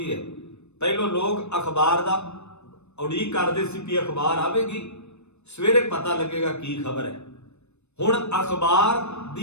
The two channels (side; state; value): right; late; 0.81 ms